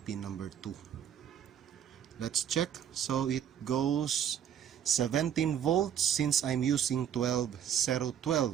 number 2. let's check. So it goes 17 volts since I'm using 12.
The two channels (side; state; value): left; quieter; 9.3 dB